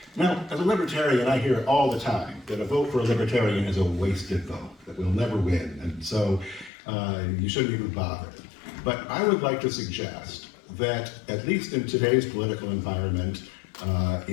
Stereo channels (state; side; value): drops out; right; at 6.7 s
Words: Now, as a libertarian, I hear all the time that a vote for a libertarian is a wasted vote, that we'll never win, and so you shouldn't even bother. But I would like to suggest that, at least in today's political environment